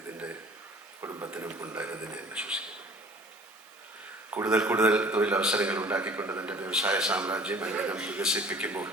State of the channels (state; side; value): normal; both; correlation 0.49